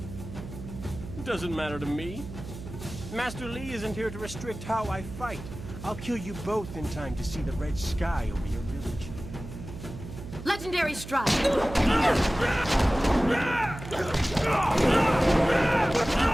Doesn't matter to me. Master Li isn't here to restrict how I fight. I'll kill you both in time to see the red sky over your village. Legendary strike!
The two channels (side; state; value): right; noise; hum, 11 dB below the sound